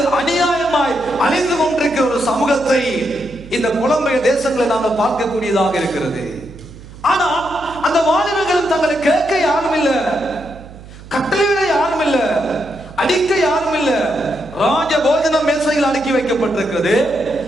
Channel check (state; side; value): noise; right; hum, 18 dB below the sound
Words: அநியாயமாய் அழிந்து கொண்டிருக்கிற ஒரு சமூகத்தை இந்த புலம்பெயர் தேசங்களை நாங்கள் பார்க்கக்கூடியதாக இருக்கிறது. ஆனால் அந்த வாலிபர்கள் தங்களை கேட்க யாரும் இல்ல, கட்டளையிட யாரும் இல்ல, அடிக்க யாரும் இல்ல. ராஜ போஜனம் மேசையில் அடுக்கி வைக்கப்பட்டிருக்கிறது.